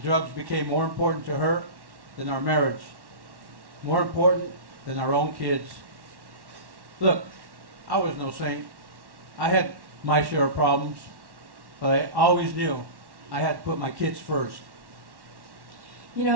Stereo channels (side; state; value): left; late; 1.1 ms